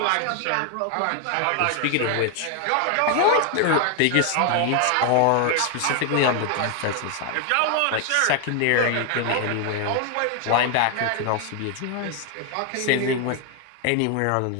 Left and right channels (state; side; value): different; both; correlation 0.00